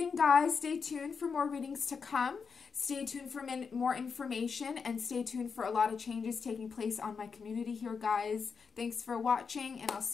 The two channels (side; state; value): right; quieter; 5.7 dB